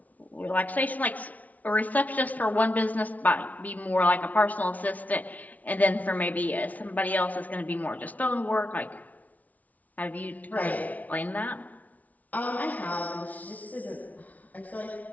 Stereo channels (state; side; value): late; right; 0.074 ms